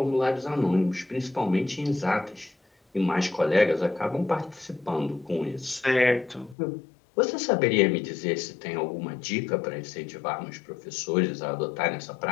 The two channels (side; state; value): right; drops out; at 6.6 s